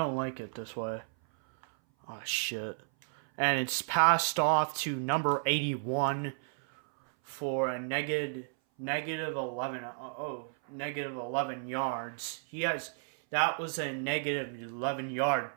like it this way. Oh shit. And it's passed off to number 81 for a negative 11. Negative 11 yards. That was a negative 11-yard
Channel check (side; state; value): left; silent; 56 dB below the other